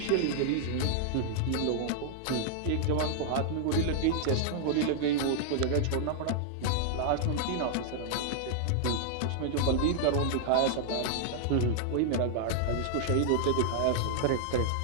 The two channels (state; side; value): different; both; correlation -0.01